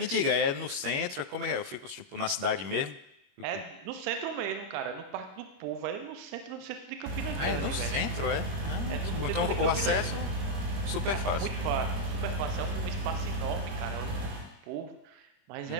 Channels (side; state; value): left; late; 21 ms